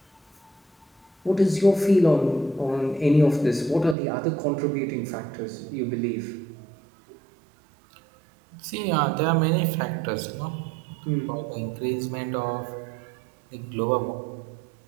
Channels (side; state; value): left; drops out; at 4.0 s